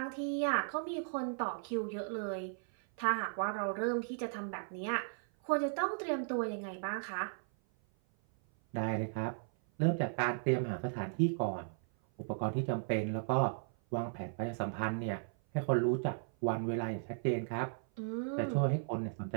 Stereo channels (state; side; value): silent; left; 54 dB below the other